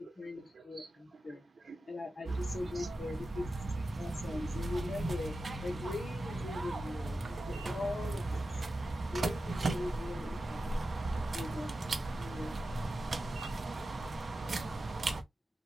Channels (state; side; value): normal; both; correlation 0.92